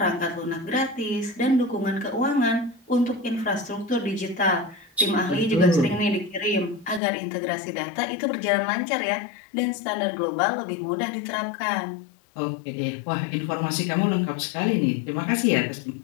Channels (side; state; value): right; drops out; at 7.0 s